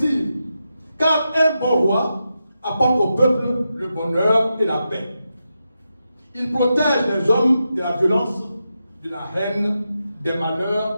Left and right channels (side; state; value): both; inverted; correlation -0.88